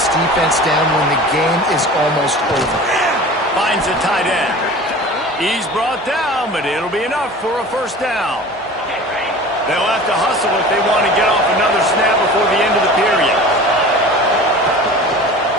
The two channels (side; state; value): both; normal; correlation 0.39